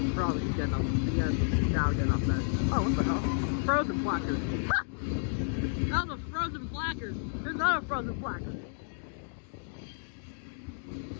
probably getting up. Yeah, now getting up there. Oh, what the hell? Frozen placard. Ha! That was a frozen placard. There's another frozen placard.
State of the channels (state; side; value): silent; right; digital silence